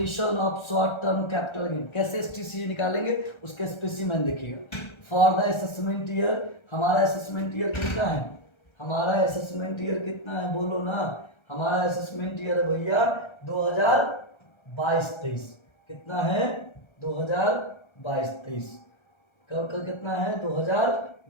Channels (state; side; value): late; right; 1.3 ms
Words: of short term capital gain. कैसे STC निकालेंगे उसके स्पेसिमेन देखिएगा। फॉर द असेसमेंट ईयर, हमारा असेसमेंट ईयर कितना है? हमारा असेसमेंट ईयर कितना है? बोलो ना। हमारा असेसमेंट ईयर है भैया 2022-23। कितना है? 2022-23। कब का कितना है?